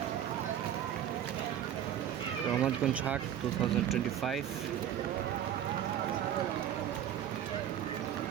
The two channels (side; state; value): left; quieter; 10.4 dB